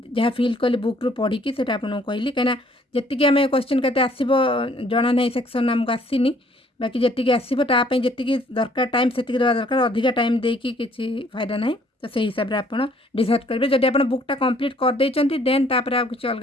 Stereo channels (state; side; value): normal; both; correlation 0.61